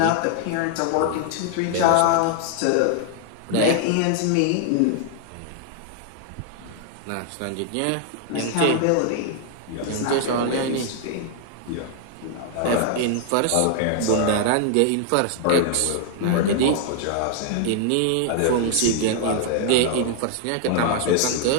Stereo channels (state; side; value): different; both; correlation 0.00